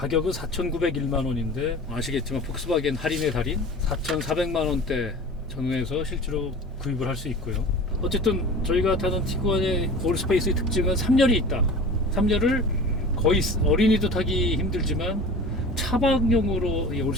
4,901만 원인데 아시겠지만 폭스바겐 할인의 달인 4,400만 원대 전후에서 실제로 구입을 할 수 있고요. 어쨌든 저희가 타는 티구안의 올스페이스의 특징은 3열이 있다. 3열을 거의 어린이도 타기 힘들지만 차박용으로 이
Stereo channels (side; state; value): both; normal; correlation 0.38